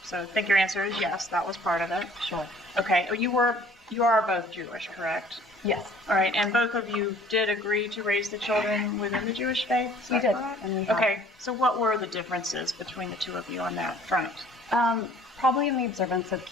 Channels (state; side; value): normal; both; correlation 0.54